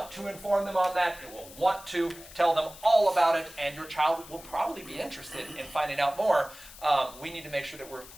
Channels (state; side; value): noise; left; hiss, 18 dB below the sound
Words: to inform them on that. It will want to tell them all about it, and your child will probably be interested in finding out more. We need to make sure that we're